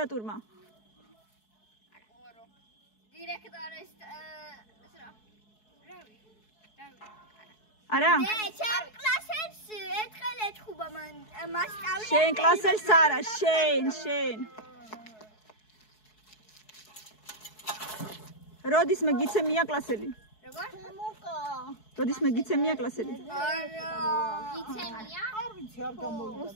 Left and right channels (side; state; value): right; late; 4.7 ms